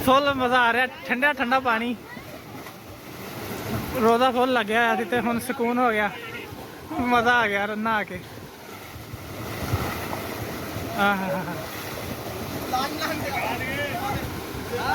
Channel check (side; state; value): both; identical; correlation 1.00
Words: ਫੁੱਲ ਮਜ਼ਾ ਆ ਰਿਹਾ, ਠੰਡਾ ਠੰਡਾ ਪਾਣੀ, ਰੋਜ਼ਾ ਫੁੱਲ ਲੱਗਿਆ ਹੋਇਆ ਸੀ ਤੇ ਹੁਣ ਸਕੂਨ ਹੋ ਗਿਆ, ਮਜ਼ਾ ਆ ਗਿਆ ਨਹਾ ਕੇ। ਆਹ